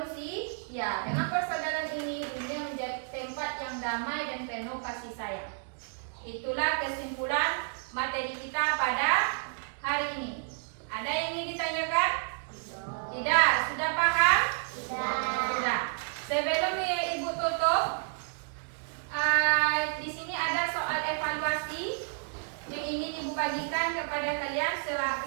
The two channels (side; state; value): left; silent; digital silence